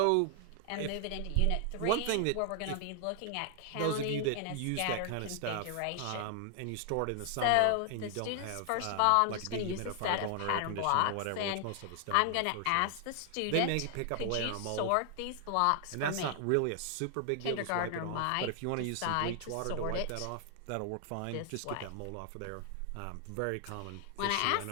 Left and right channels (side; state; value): both; different; correlation 0.00